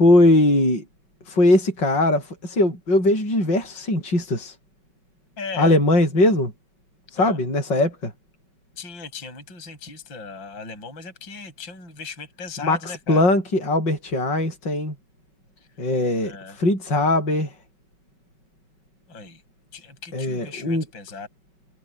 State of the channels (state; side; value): late; right; 5.3 ms